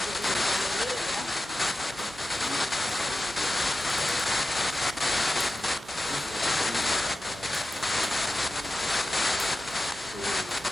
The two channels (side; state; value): both; normal; correlation 0.93